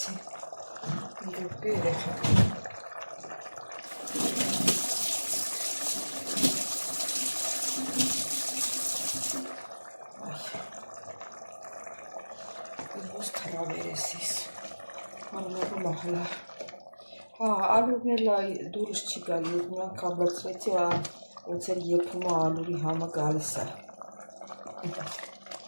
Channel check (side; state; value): both; inverted; correlation -1.00